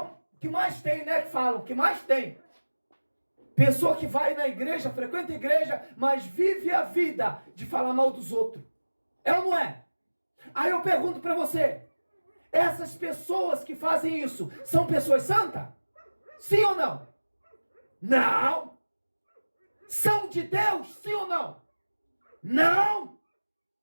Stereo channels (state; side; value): inverted; both; correlation -1.00